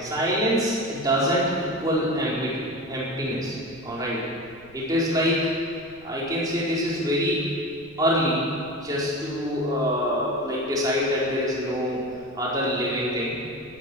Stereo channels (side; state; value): right; noise; rumble, 25 dB below the sound